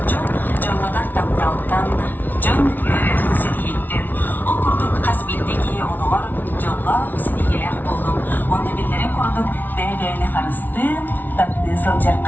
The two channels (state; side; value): late; right; 0.085 ms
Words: Jonladan taptaltan, jon yürüdün sidiyettin. Okurduk kasbindeki onular, jonla sidiyeler buldum. Onu billerin kurduk, değerli karıstın, tatlı